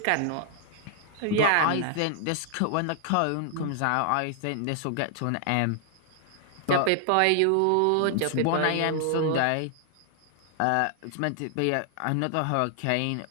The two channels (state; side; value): different; both; correlation 0.00